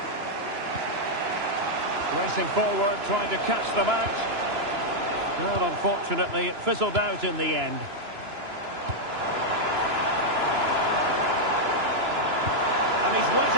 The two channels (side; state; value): left; late; 2.9 ms